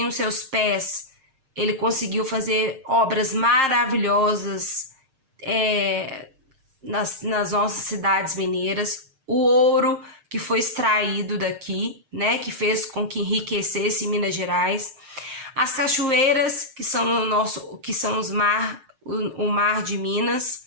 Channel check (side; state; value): left; late; 6.6 ms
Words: os seus pés, ele conseguiu fazer obras maravilhosas nas nossas cidades mineiras. O ouro que foi extraído daqui, né, que fez com que enriquecesse Minas Gerais. As cachoeiras, que são o mar de Minas.